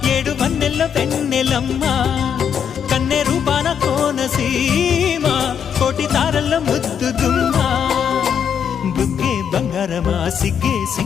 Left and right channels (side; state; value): right; quieter; 7.9 dB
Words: ఏడు వన్నెల్లో వెన్నెలమ్మ కన్నె రూపాన కోనసీమ కోటి తారల్లో ముద్దు గుమ్మ బుగ్గే బంగారమ సిగ్గే